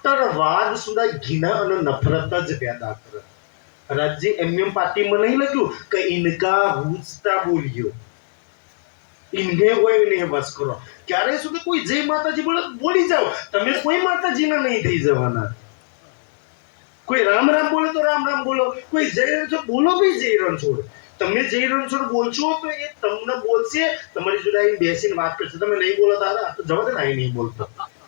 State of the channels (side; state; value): right; silent; 62 dB below the other